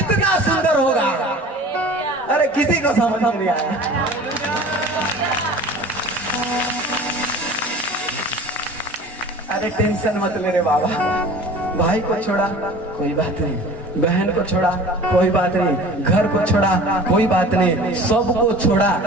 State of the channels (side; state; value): both; normal; correlation 0.42